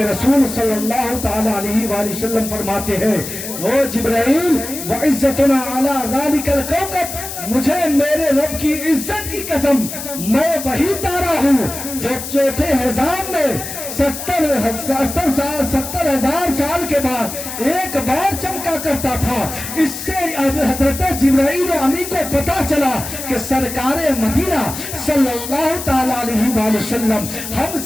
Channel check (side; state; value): left; noise; hiss, 8 dB below the sound